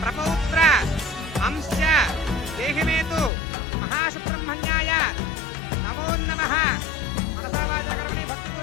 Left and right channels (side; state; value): right; drops out; at 3.3 s